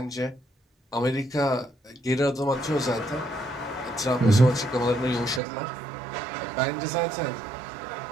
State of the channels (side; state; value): left; drops out; at 5.4 s